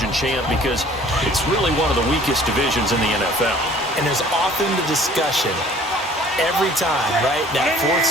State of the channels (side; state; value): both; normal; correlation 0.52